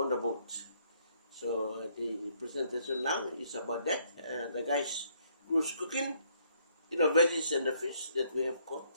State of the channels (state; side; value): inverted; both; correlation -0.68